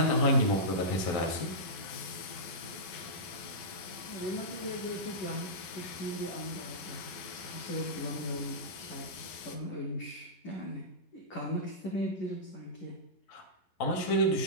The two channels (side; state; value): right; late; 11 ms